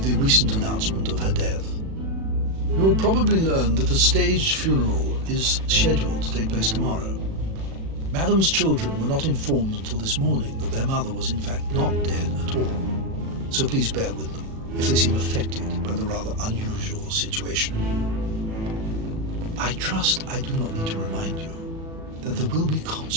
the recent announcement of her death. You will probably learn that a staged funeral is scheduled to take place tomorrow. Madame's children were not informed until this morning that their mother was in fact not dead at all. So please bear with them if they seem affected by the rather unusual situation. I trust I do not need to remind you that there will be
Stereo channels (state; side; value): late; left; 37 ms